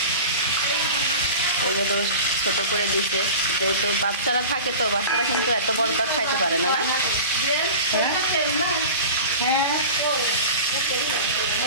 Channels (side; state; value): both; inverted; correlation -0.35